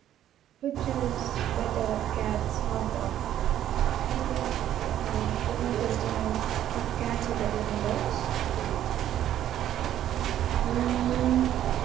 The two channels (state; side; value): quieter; left; 11.5 dB